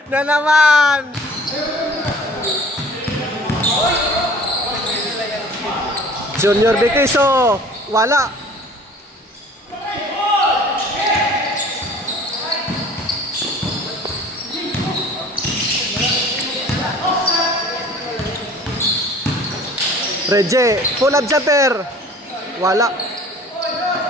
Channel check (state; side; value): normal; both; correlation 0.48